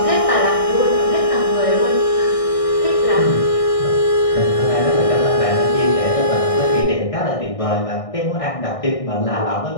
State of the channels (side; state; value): right; late; 1.6 ms